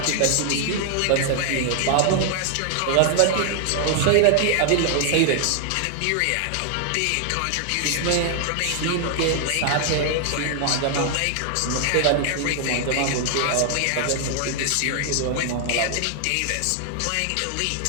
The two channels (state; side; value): different; both; correlation 0.00